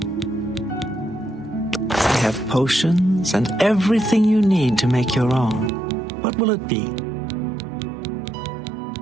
I have potions and everything you need to make your own. What will it be?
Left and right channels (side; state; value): left; drops out; at 5.7 s